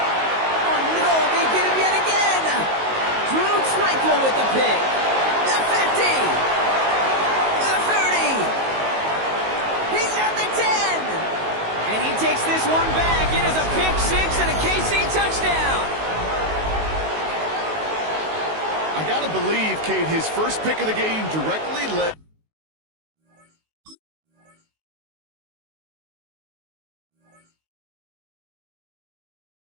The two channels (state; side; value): late; left; 19 ms